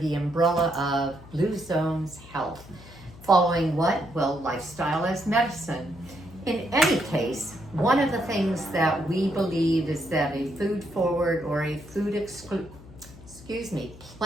umbrella of Blue Zones Health. Following what? Well, lifestyle as medicine. In any case, one of the things that we believe is that a food forward or a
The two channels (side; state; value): left; noise; hum, 19 dB below the sound